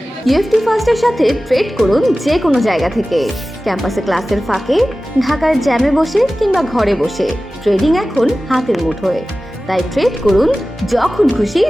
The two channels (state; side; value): normal; both; correlation 0.96